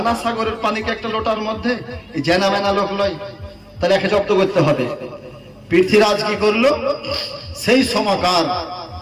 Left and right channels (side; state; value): both; identical; correlation 1.00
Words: সাগরের পানিকে একটা লোটার মধ্যে জেনা মেনা লোক লয়, তাহলে একে জব্দ করতে হবে। পৃথ্বীরাজ কি করলো, সেই সময়কার